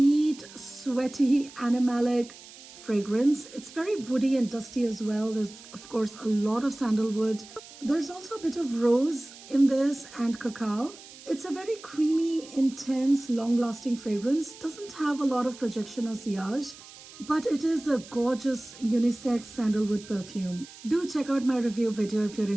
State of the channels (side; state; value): right; noise; hiss, 18 dB below the sound